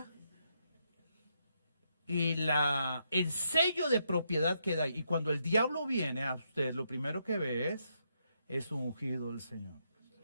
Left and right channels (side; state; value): both; inverted; correlation -0.79